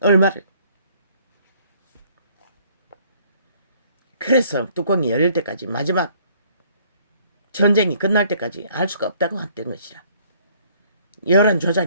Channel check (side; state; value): both; inverted; correlation -0.60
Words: 얼마를. 그래서 뚜껑이 열릴 때까지 마지막 전쟁이 끝날 때까지 알 수가 없다고 했던 것이라. 여론